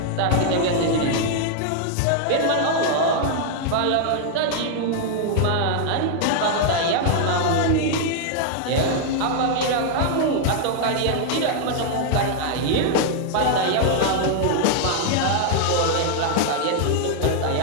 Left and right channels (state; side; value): different; both; correlation 0.00